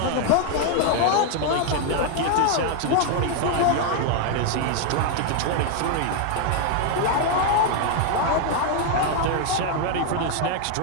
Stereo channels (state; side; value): different; both; correlation 0.00